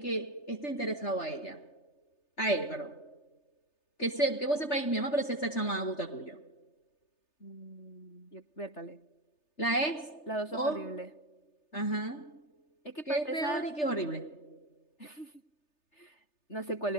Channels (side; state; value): right; late; 3.3 ms